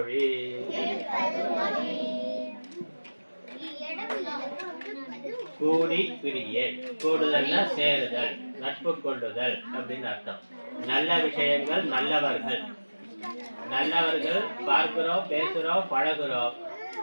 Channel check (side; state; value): both; inverted; correlation -1.00